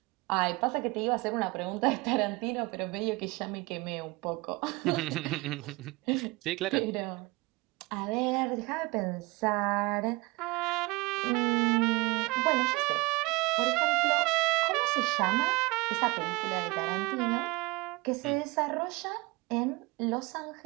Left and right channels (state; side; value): quieter; left; 24.1 dB